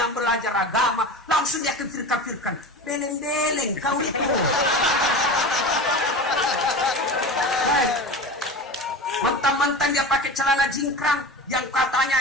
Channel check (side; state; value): both; normal; correlation 0.30